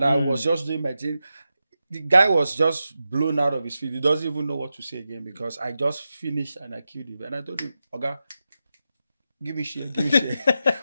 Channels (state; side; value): inverted; both; correlation -0.90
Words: I was just doing my thing. The guy was just blown out of his feet. He doesn't even know what to say again because I just finished and I killed him. And I told him, Oga, give me shit.